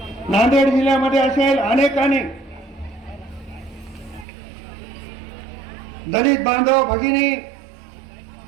नांदेड जिल्ह्यामध्ये असेल, अनेकांनी दलित बांधव भगिनी,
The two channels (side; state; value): left; drops out; at 4.2 s